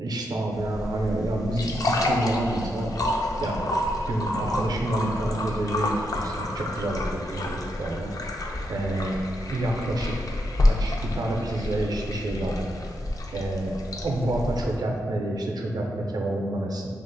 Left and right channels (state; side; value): normal; both; correlation 0.82